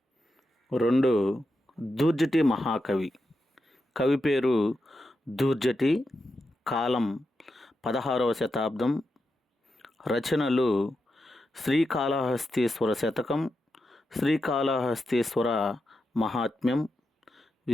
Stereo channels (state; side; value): normal; both; correlation 0.87